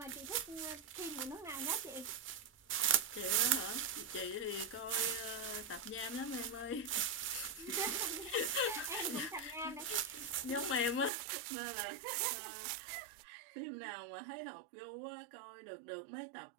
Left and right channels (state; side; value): drops out; left; at 11.1 s